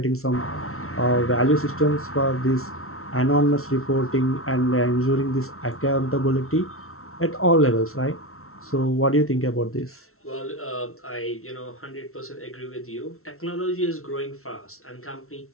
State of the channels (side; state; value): right; late; 0.62 ms